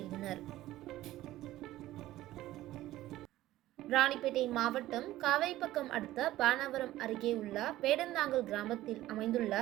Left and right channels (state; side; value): quieter; left; 15.3 dB